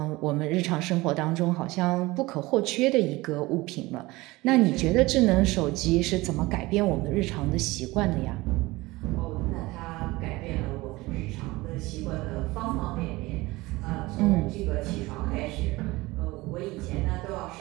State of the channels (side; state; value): left; quieter; 20.7 dB